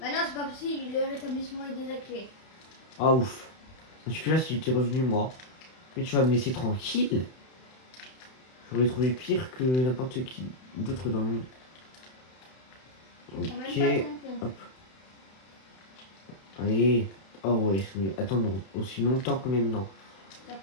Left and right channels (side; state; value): right; late; 31 ms